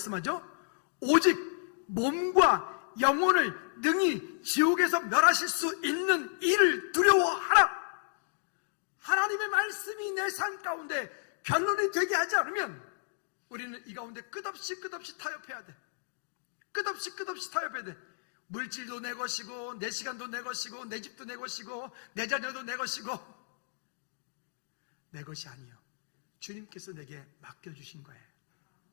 오직 몸과 영혼을 능히 지옥에서 멸하실 수 있는 이를 두려워하라. 하나님의 말씀이 내 삶 가운데 변론이 되게 하지 않으면 우리는 이 가운데 끝없이 타협해야 돼. 끝없이 타협해야 돼. 물질도 내 것이고 내 시간도 내 것이고 내 집도 내 것이고 내 자녀도 내 것이고 내 것이 아니요, 주님께서 내게 맡겨주신 거예요.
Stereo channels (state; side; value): silent; right; digital silence